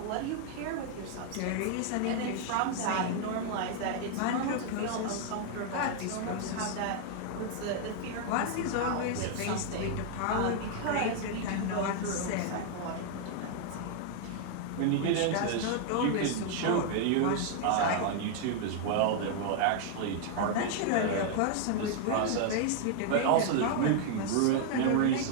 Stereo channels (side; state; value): both; different; correlation 0.00